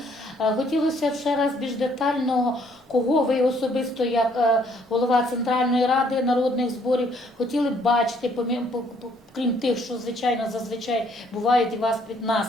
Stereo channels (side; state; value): both; normal; correlation 0.65